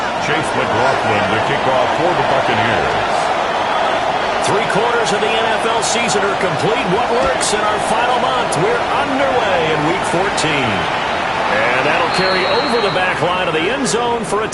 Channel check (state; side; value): identical; both; correlation 1.00